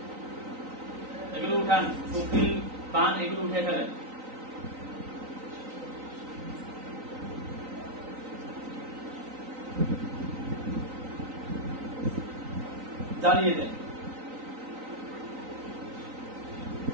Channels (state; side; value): late; left; 3.9 ms